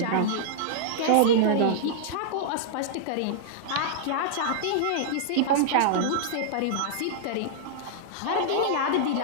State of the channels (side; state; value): both; different; correlation -0.02